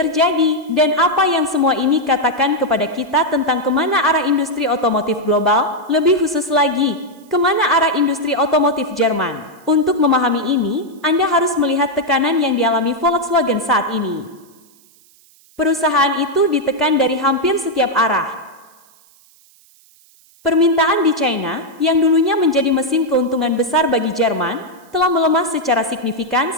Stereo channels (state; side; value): noise; right; hiss, 29 dB below the sound